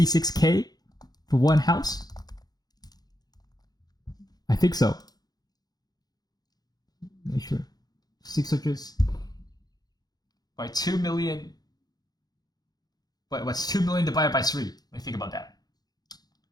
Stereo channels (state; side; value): late; right; 0.19 ms